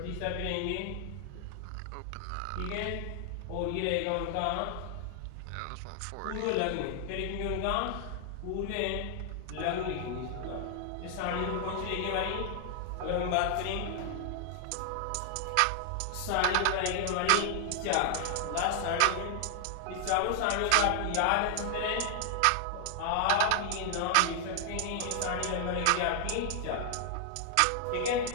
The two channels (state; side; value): different; both; correlation 0.00